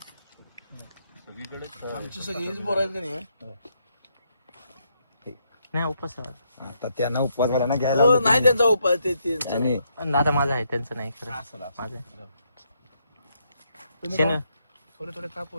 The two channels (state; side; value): inverted; both; correlation -0.76